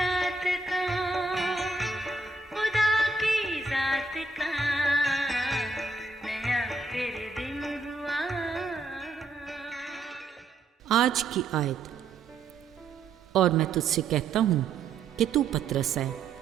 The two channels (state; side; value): quieter; left; 3.7 dB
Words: का, खुदा की जात का, नया फिर दिन हुआ। आज की आयत। और मैं तुझसे कहता हूँ कि तू पतरस है